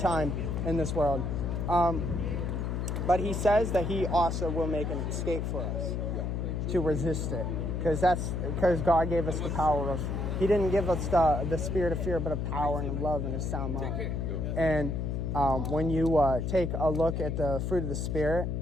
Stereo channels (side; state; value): left; noise; hum, 1 dB below the sound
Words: in this world. But he says that he also will make an escape for us to resist it, because God gave us the power of. He didn't give us the spirit of fear, but of power and of love and a sound mind. And when you take a look at the fruit of the Spirit,